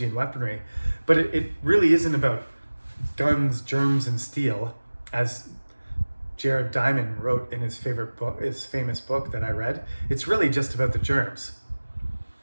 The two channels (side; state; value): both; inverted; correlation -1.00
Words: and weaponry. But it really isn't about guns, germs, and steel, as Jared Diamond wrote in his famous book that I read. It's really just about the germs.